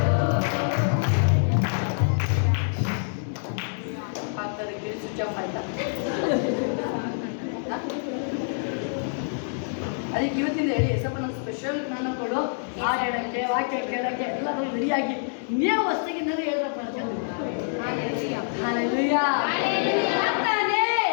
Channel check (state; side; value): silent; right; digital silence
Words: ಅದಕ್ಕೆ ಇವತ್ತಿಂದ ಹೇಳಿ ಸ್ವಲ್ಪ ನಮ್ಮ ಸ್ಪೆಷಲ್ ಜ್ಞಾನ ಕೊಡು, ಹಾಡು ಹೇಳಕ್ಕೆ, ವಾಕ್ಯ ಕೇಳಕ್ಕೆ ಎಲ್ಲರೂ ರೆಡಿಯಾಗಿ ನೀವು ಹೊಸಗಿಂದಲೇ ಹೇಳ್ಬೇಕು. ಹಾಲೆಲೂಯಾ.